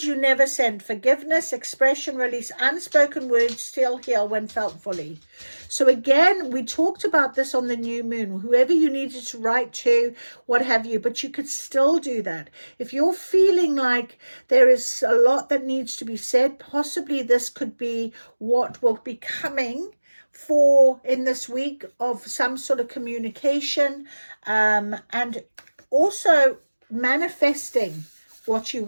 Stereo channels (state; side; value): inverted; both; correlation -1.00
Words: you never sent, forgiveness, expression, release, unspoken words still heal when felt fully. So again, we talked about this on the new moon, whoever you needed to write to, what have you, but you could still do that. If you're feeling like there is a lot that needs to be said, possibly this could be what will be coming for in this week of some sort of communication, and also manifesting what you